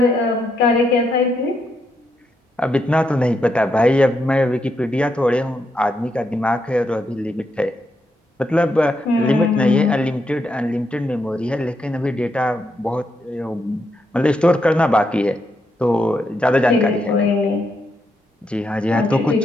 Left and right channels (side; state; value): both; normal; correlation 0.80